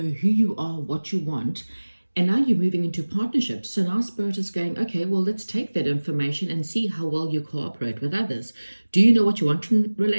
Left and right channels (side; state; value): both; inverted; correlation -1.00